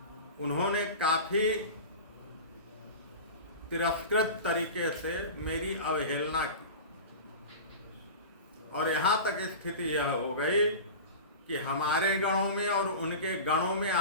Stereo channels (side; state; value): both; inverted; correlation -0.31